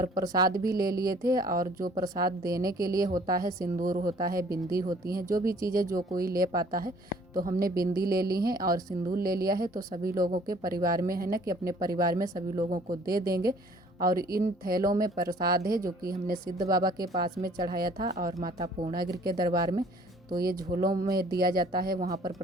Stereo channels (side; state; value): both; normal; correlation 0.56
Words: प्रसाद भी ले लिए थे। और जो प्रसाद देने के लिए होता है, सिंदूर होता है, बिंदी होती हैं, जो भी चीज़ें जो कोई ले पाता है, तो हमने बिंदी ले ली हैं और सिंदूर ले लिया है। तो सभी लोगों के परिवार में है ना कि अपने परिवार में सभी लोगों को दे देंगे। और इन थैलों में प्रसाद है जो कि हमने सिद्ध बाबा के पास में चढ़ाया था और माता पूर्णागिरि के दरबार में। तो ये झोलों में दिया जाता है वहाँ पर